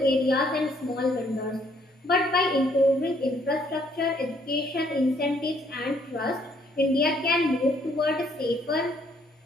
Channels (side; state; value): both; normal; correlation 0.67